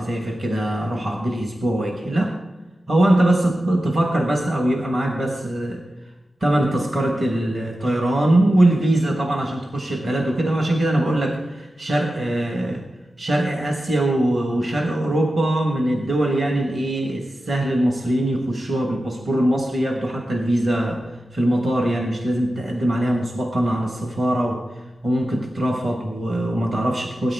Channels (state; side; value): normal; both; correlation 0.93